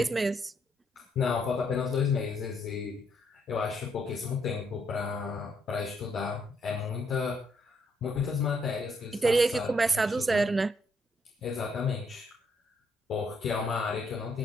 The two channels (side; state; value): both; normal; correlation 0.73